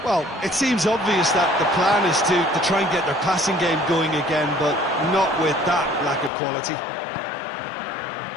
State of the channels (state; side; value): drops out; right; at 6.3 s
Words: Well, it seems obvious that the plan is to try and get their passing game going again, but not with that lack of quality.